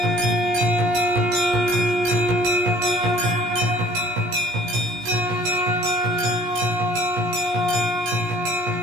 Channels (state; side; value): late; left; 17 ms